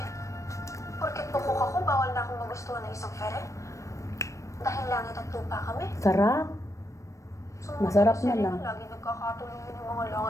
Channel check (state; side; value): late; right; 0.15 ms